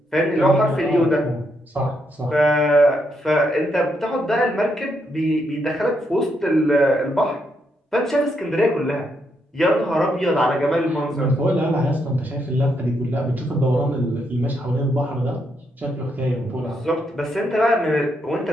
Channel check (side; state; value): both; normal; correlation 0.78